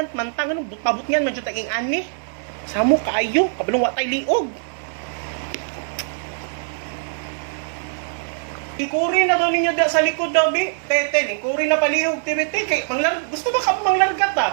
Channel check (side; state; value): left; silent; 62 dB below the other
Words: man tang anong pabot niyan man jud taging ani. Samo kaayo kabulong wa tay liog. Ikuri na daw ninyo da sa likod daw bi. Tete, lingkuri na palihog TBT kay gusto ba ka manglargat